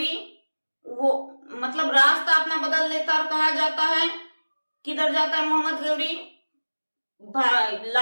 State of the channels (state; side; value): inverted; both; correlation -1.00